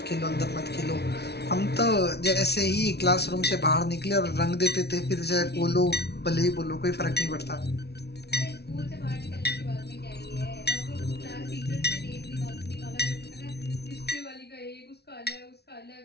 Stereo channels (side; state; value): right; late; 0.49 ms